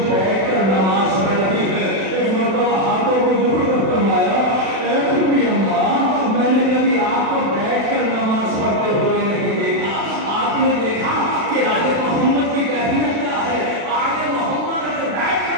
بیٹھ کر نماز پڑھ رہی ہے. ایک مرتبہ ہاتھوں کو جوڑ کر فرمایا, اے بھوڑی اماں میں نے کبھی آپ کو بیٹھ کر نماز پڑھتے ہوئے نہیں دیکھا. آپ نے دیکھا کہ آل محمد کی کیفیت کیا ہے. آل محمد اگر بیٹھ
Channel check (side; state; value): left; late; 36 ms